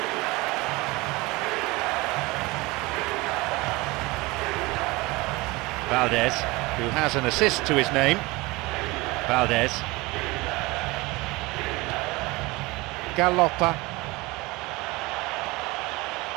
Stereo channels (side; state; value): left; quieter; 22.8 dB